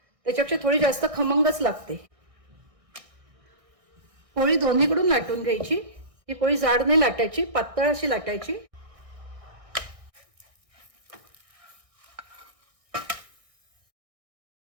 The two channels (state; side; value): late; left; 1.6 ms